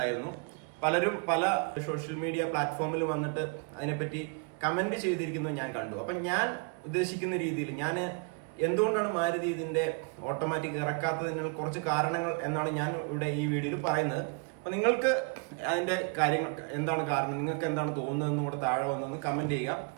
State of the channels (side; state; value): left; quieter; 36.2 dB